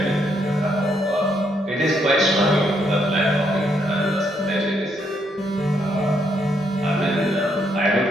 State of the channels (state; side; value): normal; both; correlation 0.75